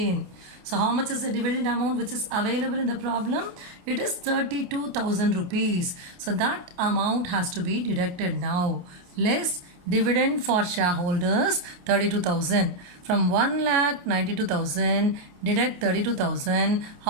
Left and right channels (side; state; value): left; late; 28 ms